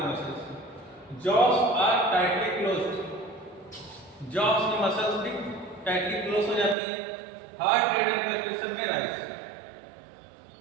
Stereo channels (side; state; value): left; drops out; at 6.8 s